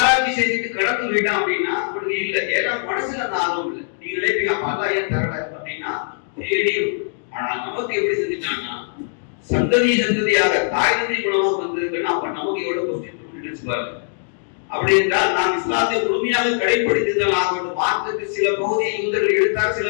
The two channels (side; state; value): right; silent; digital silence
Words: செஞ்சுட்டு கடந்து போயிட்டான் அப்படின்னா அவனுக்கு இல்லை. ஏன்னா மனசுல அந்த ஆர்வம் இல்லை. நீங்க நினைப்பீங்க அப்ப அல்லாஹ் ஏன் தரல அப்படின்னா தேடியும். ஆனா நமக்கு எப்படி செஞ்சுட்டாங்கன்னா சந்ததியாக தாய் தந்தை மூலமா வந்திருக்குன்னா அப்ப நமக்கு எவ்வளவு கொஸ்டின் நினைச்சுப்பாரு. அப்படி என்றால் நாம் இஸ்லாத்தை முழுமையாக கடைபிடித்ததால் ஆகணும். மார்க்கத்துக்கு சில பகுதியை யூதர்கள் எடுத்தார், சில